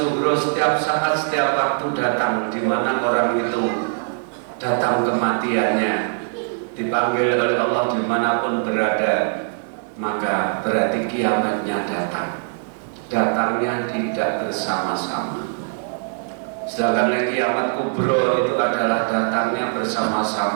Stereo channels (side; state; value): left; silent; digital silence